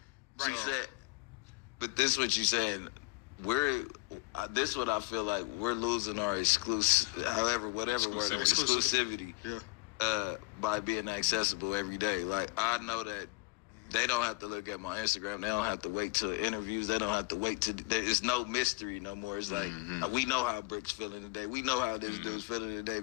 Right. But this is what you saying. This is what I feel like we're losing our exclusivity by being accessible every day. Like I know that they don't have to look at my Instagram. They don't have to wait till interviews. They don't have to wait to. There's no mystery no more. It's like we know how Brick's feeling today. We know how this dude's feeling today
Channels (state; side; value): quieter; right; 24.4 dB